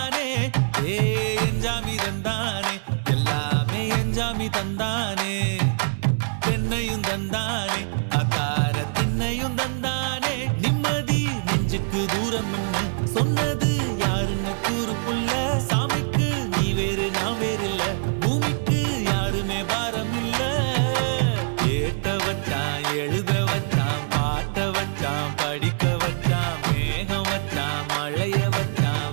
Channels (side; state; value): left; silent; 57 dB below the other